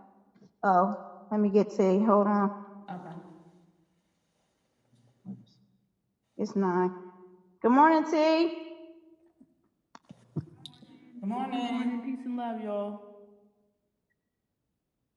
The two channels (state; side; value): identical; both; correlation 1.00